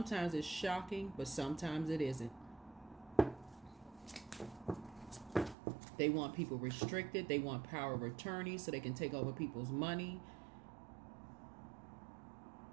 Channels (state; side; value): drops out; left; at 5.6 s